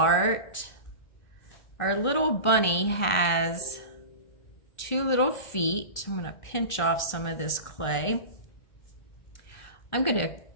Our little bunny has 2 little feet. I'm going to pinch off some of this clay. I'm going to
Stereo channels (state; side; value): late; right; 1.4 ms